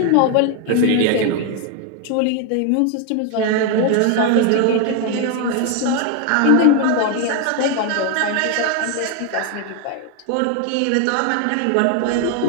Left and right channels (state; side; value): different; both; correlation 0.01